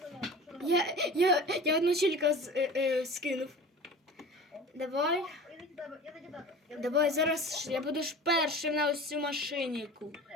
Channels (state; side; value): normal; both; correlation 0.37